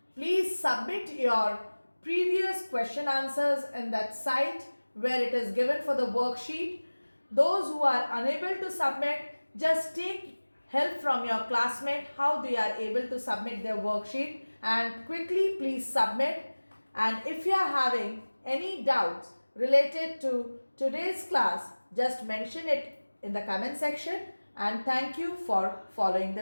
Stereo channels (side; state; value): both; inverted; correlation -1.00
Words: please submit your previous question answers in that site where it is given for the worksheet. Those who are unable to submit, just take help from your classmate how they are able to submit their worksheet, and quickly please submit. And if you are having any doubts related to today's class, just mention it in the comment section, and thank you for following